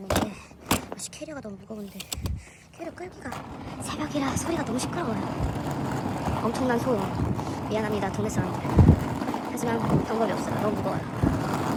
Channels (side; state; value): both; identical; correlation 1.00